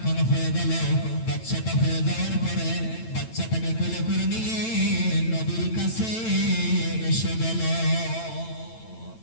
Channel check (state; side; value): late; right; 9.0 ms